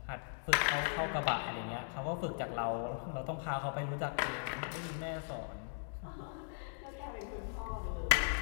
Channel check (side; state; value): right; silent; digital silence